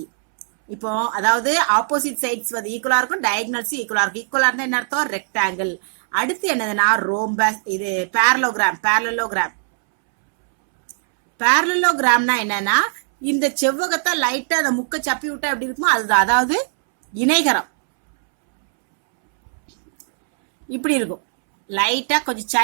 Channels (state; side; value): silent; left; 66 dB below the other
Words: இப்போ அதாவது ஆப்போசிட் சைட்ஸ் வந்து ஈக்குவலா இருக்கும், டயகனல்ஸ் ஈக்குவலா இருக்கும். ஈக்குவலா இருந்தா என்ன அர்த்தம், ரெக்டாங்கிள். அடுத்து என்னதுன்னா ரோம்பஸ். இது parallelogram. parallelogram. parallelogramனா என்னன்னா, இந்த செவ்வகத்தை லைட்டா அந்த முக்க சப்பி விட்டா எப்படி இருக்குமோ அதுதான், அதாவது இணைகரம். இப்படி இருக்கும், லைட்டா கொஞ்சம்